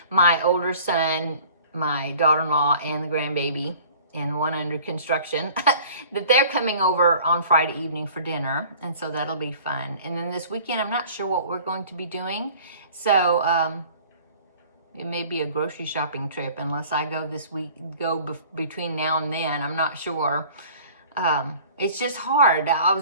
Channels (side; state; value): both; inverted; correlation -0.48